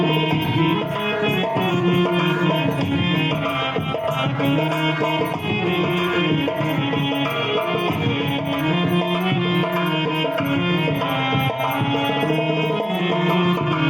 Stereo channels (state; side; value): identical; both; correlation 1.00